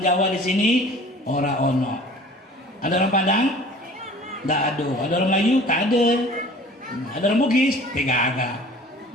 di sini, ora ono. Ada orang Padang? Tidak ada. Ada orang Melayu? Tak ada. Ada orang Bugis? Tidak ada.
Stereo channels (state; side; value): normal; both; correlation 0.47